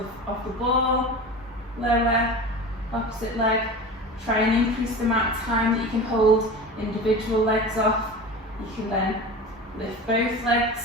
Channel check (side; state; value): both; normal; correlation 0.32